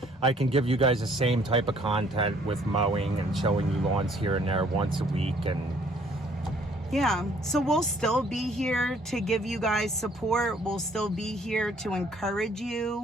give you guys the same type of content with mowing and showing you lawns here and there once a week. And yeah, so we'll still be here to give you guys support. We'll still be here to encourage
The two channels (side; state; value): both; normal; correlation 0.61